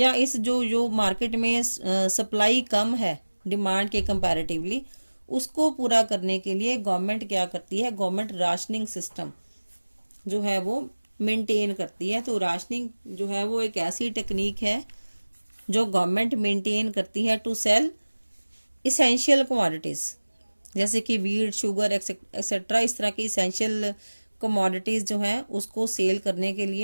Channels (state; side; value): inverted; both; correlation -1.00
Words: इस जो मार्केट में सप्लाई कम है डिमांड के कंपैरेटिवली, उसको पूरा करने के लिए गवर्नमेंट क्या करती है, गवर्नमेंट राशनिंग सिस्टम जो है वो मेंटेन करती है। तो राशनिंग जो है वो एक ऐसी टेक्निक है जो गवर्नमेंट मेंटेन करती है टू सेल इसेंशियल कमोडिटीज, जैसे कि वीट, शुगर एक्सेट्रा, इस तरह की इसेंशियल कमोडिटीज जो है उसको सेल करने के